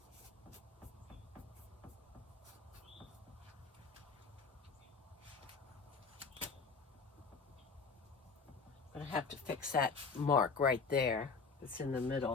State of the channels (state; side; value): quieter; right; 4.8 dB